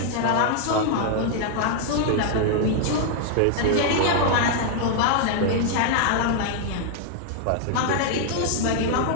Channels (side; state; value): both; different; correlation 0.00